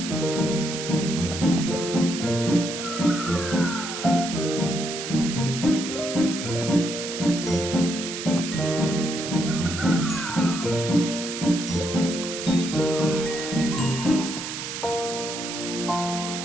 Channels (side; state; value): right; noise; hiss, 7 dB below the sound